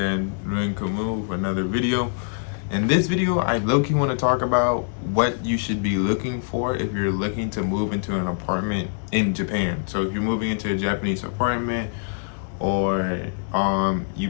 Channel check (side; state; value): right; silent; digital silence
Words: Ruin Kamu, for another video. In this video, I low-key want to talk about what you should be looking for if you're looking to move into an apartment in Japan. So if you're moving into a Japanese apartment, or you